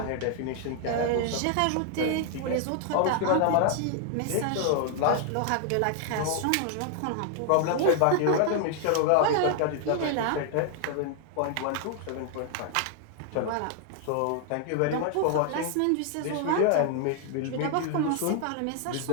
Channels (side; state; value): both; different; correlation 0.00